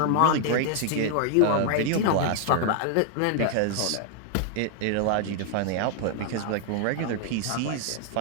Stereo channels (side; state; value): both; different; correlation 0.00